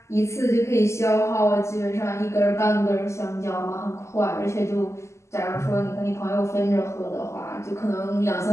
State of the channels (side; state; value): right; late; 0.13 ms